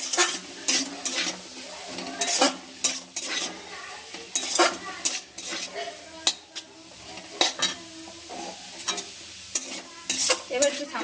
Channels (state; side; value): identical; both; correlation 1.00